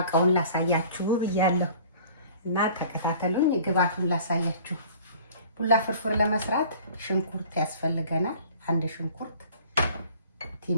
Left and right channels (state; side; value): inverted; both; correlation -0.48